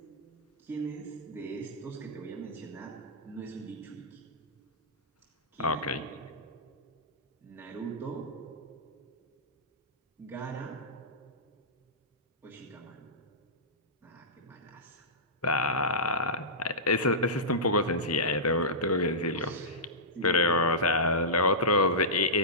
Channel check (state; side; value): normal; both; correlation -0.16